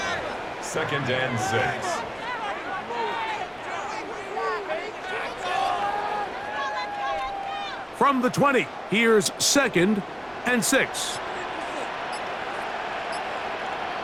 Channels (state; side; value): identical; both; correlation 1.00